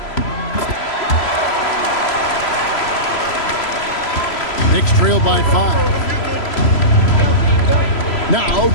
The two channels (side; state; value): right; late; 3.0 ms